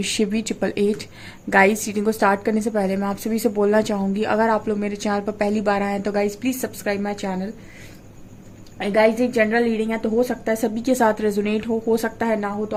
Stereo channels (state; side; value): identical; both; correlation 1.00